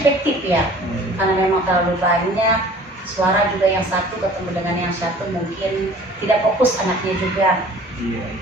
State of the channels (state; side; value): normal; both; correlation 0.48